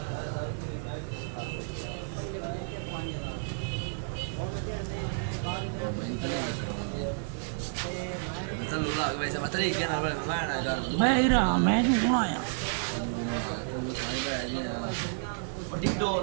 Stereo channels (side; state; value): left; silent; digital silence